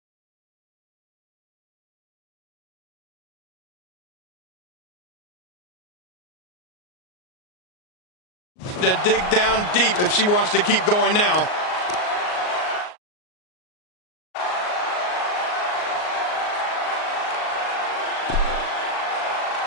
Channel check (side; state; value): right; late; 38 ms